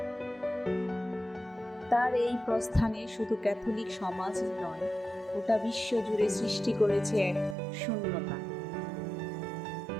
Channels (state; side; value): drops out; left; at 7.6 s